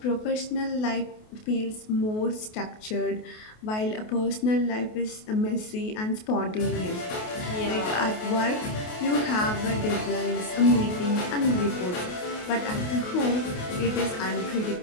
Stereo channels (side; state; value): right; late; 28 ms